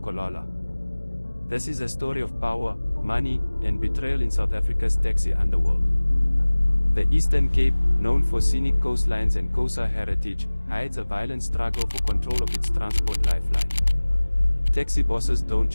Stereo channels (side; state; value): both; inverted; correlation -1.00